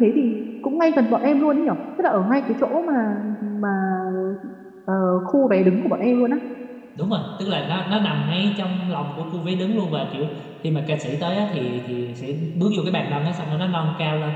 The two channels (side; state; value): both; identical; correlation 1.00